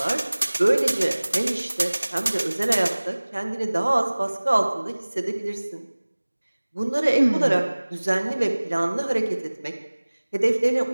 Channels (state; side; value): inverted; both; correlation -1.00